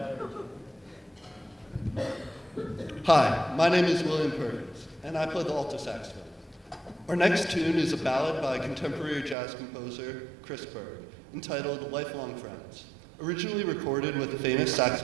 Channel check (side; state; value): left; drops out; at 9.3 s